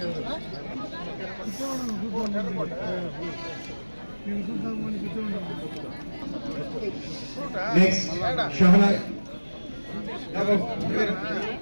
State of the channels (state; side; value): inverted; both; correlation -1.00